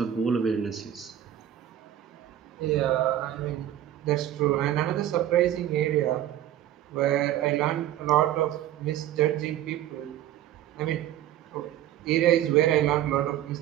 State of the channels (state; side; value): quieter; left; 12.1 dB